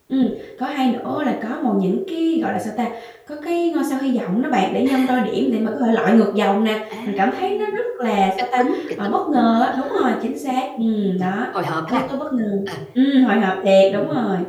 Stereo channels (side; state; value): both; identical; correlation 1.00